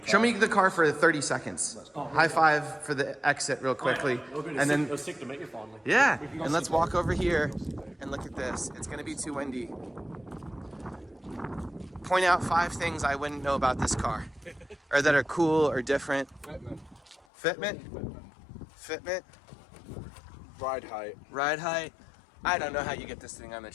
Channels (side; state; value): right; drops out; at 17.2 s